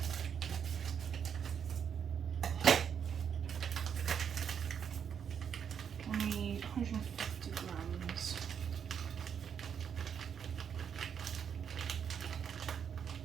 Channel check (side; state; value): left; quieter; 7.7 dB